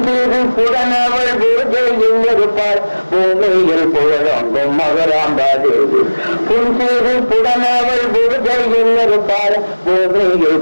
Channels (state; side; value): inverted; both; correlation -1.00